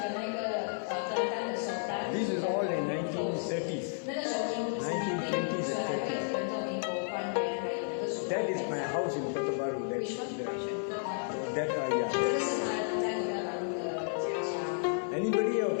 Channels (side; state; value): right; silent; digital silence